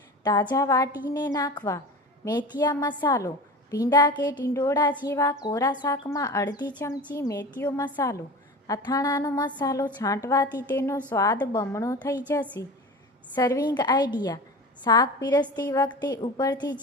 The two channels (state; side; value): normal; both; correlation 0.33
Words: તાજા વાટીને નાખવા. મેથીયા મસાલો. ભીંડા કે ટિંડોળા જેવા કોરા શાકમાં અડધી ચમચી મેથીયો મસાલો. અથાણાનો મસાલો છાંટવાથી તેનો સ્વાદ બમણો થઈ જશે. Serving idea. શાક પીરસતી વખતે ઉપરથી